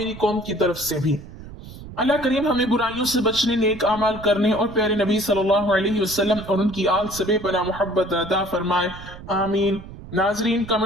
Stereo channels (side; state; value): right; noise; rumble, 15 dB below the sound